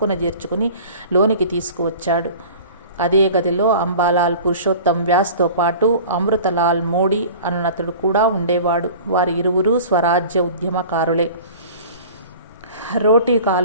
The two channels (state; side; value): inverted; both; correlation -0.42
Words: చేర్చుకుని లోనికి తీసుకువచ్చాడు. అదే గదిలో అంబాలాల్ పురుషోత్తం వ్యాస్తో పాటు అమృతలాల్ మోడీ అన్నతడు కూడా ఉండేవాడు. వారి ఇరువురు స్వరాజ్య ఉద్యమకారులే. రోటీ